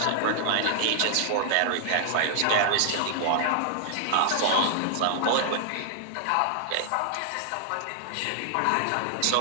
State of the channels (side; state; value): both; different; correlation -0.01